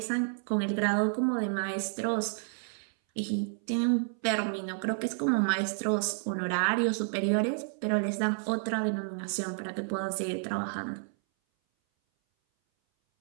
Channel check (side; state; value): left; silent; 58 dB below the other